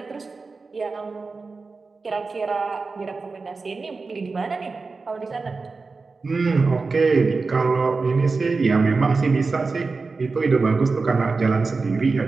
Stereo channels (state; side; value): quieter; left; 4.1 dB